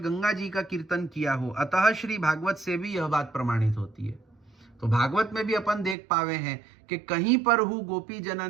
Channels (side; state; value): left; drops out; at 6.0 s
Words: जी का कीर्तन किया हो, अतः श्री भागवत से भी यह बात प्रमाणित होती है। तो भागवत में भी अपन देख पावे हैं कि कहीं पर हु गोपी